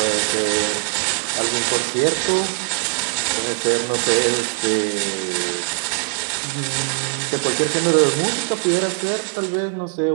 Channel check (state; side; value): silent; left; digital silence